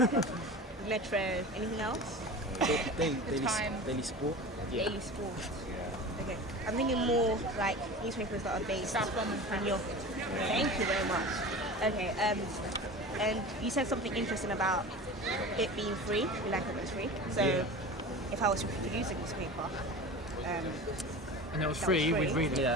Metro. Anything else? Daily Sport. Daily Sport. Okay. I'm thinking more like newspapers that are based in your. Thank you very much. Okay. And you said something interesting about it being free. We like it when it's free. So, if I was to produce a newspaper, And it was that free, was we'd read it. Yeah.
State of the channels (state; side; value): normal; both; correlation 0.34